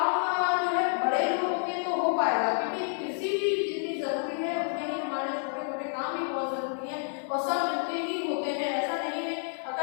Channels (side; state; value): right; silent; 57 dB below the other